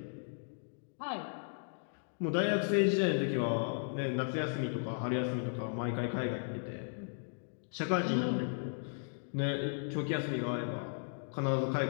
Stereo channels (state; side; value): silent; right; digital silence